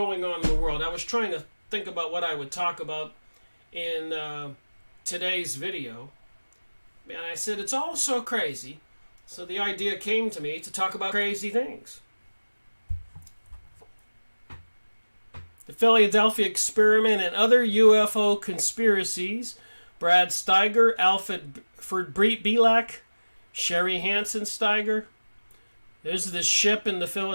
on in the world. I was trying to think about what I would talk about in today's video. And I said, it's all so crazy. So the idea came to me to talk about crazy things. The Philadelphia Experiment and other UFO conspiracies. Brad Steiger, Alfred Belak, Sherry Hansen Steiger. There's this ship in the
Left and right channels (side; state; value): both; inverted; correlation -1.00